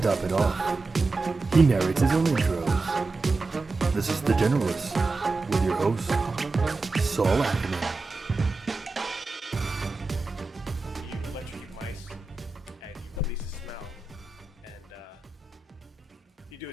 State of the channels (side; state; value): left; quieter; 3.7 dB